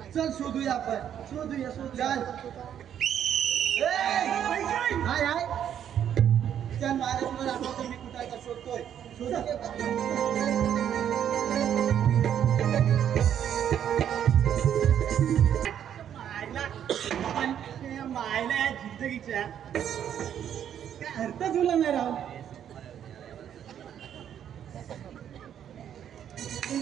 चल शोधूया आपण. शोधूया. चल. हाय हाय. चल महाराज, आपण मी कुठं आहे का शोधतोय. मायला या जिंदगीच्या काय अर्थ तुला नाही राव.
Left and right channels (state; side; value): quieter; left; 9.6 dB